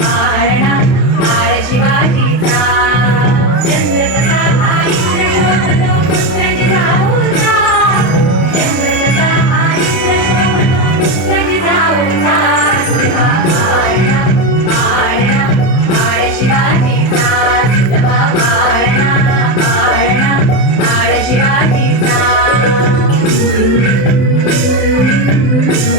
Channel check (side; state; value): right; late; 32 ms